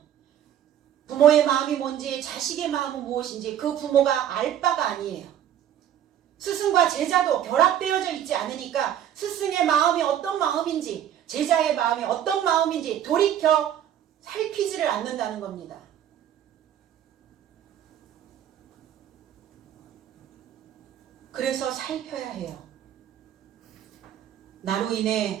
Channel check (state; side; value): quieter; left; 10.5 dB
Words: 부모의 마음이 뭔지 자식의 마음은 무엇인지 그 부모가 알 바가 아니에요. 스승과 제자도 결합되어져 있지 않으니까 스승의 마음이 어떤 마음인지 제자의 마음이 어떤 마음인지 돌이켜 살피지를 않는다는 겁니다. 그래서 살펴야 해요. 나로